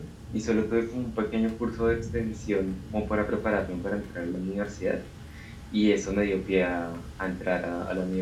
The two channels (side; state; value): both; identical; correlation 1.00